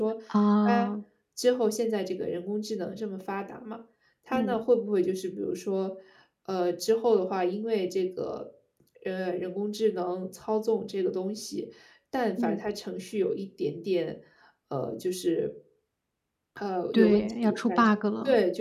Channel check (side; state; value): both; identical; correlation 1.00